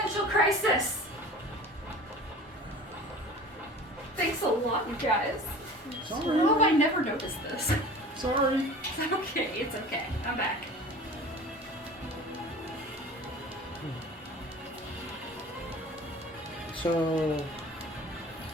crisis. Thanks a lot, you guys. Sorry. How have I never noticed this? Sorry. It's okay. It's okay. I'm back. So,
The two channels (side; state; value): both; normal; correlation 0.40